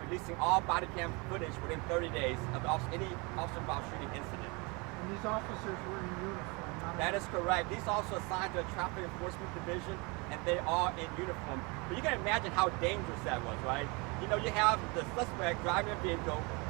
releasing all body cam footage within 30 days of any officer-involved shooting incident. And these officers were in uniform, not That is correct. These officers are assigned to a traffic enforcement division, and they are in uniform. But you can imagine how dangerous that was, right? You have the suspect driving a vehicle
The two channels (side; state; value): left; quieter; 28.6 dB